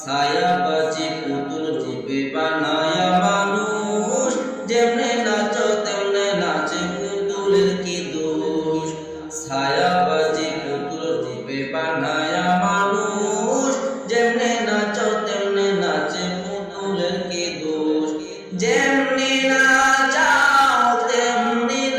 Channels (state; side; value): identical; both; correlation 1.00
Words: বাজি পুতুল রূপে বানায়া মানুষ, যেমনে নাচো তেমনে নাচে পুতুলের কি দোষ। ছায়া বাজি পুতুল রূপে বানায়া মানুষ, যেমনে নাচো তেমনে নাচে পুতুলের কি দোষ। যেমনি নাচাও তেমনি